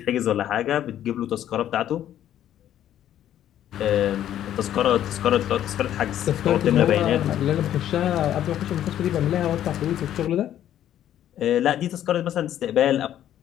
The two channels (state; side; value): quieter; right; 11.4 dB